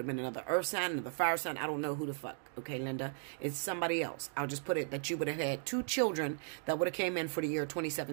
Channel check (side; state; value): left; silent; 53 dB below the other